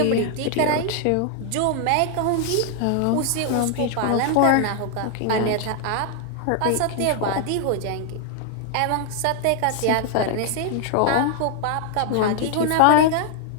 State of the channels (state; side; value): different; both; correlation 0.00